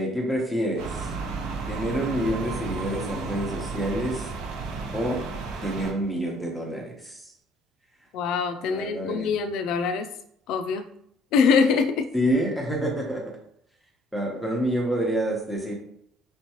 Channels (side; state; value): both; normal; correlation 0.60